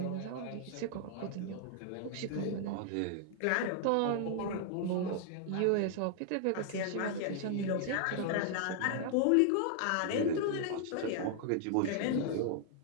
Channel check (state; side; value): different; both; correlation 0.00